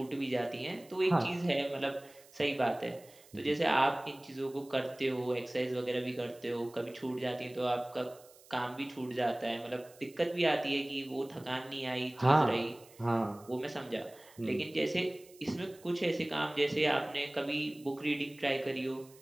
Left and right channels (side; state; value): right; noise; hiss, 24 dB below the sound